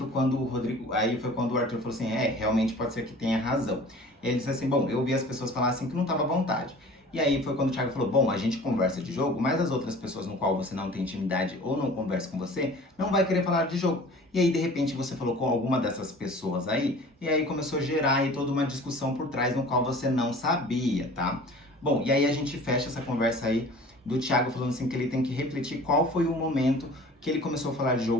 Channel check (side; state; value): both; normal; correlation 0.44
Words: quando o Arthur falou assim, realmente pode ser que tenha razão. E ele disse assim, bom, eu ouvi as pessoas falar assim que não estava à vontade. E aí foi quando o Thiago falou, bom, a gente conversa de jogo, mas as outras pessoas no qual você não tem intimidade ou não conversa com você, não vai querer falar de jogo. E aí, de repente, você falou com alguma dessas pessoas aí, e aí começou a gerar aí toda uma discussão por trás no qual você não sabia, tá? Bom, e aí a gente fecha essa conversa aí do Thiago falando assim que ele tem que refletir qual foi o momento que ele começou a falar de